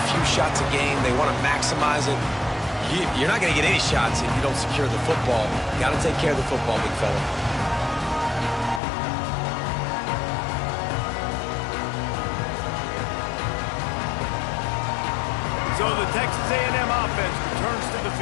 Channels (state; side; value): drops out; right; at 8.8 s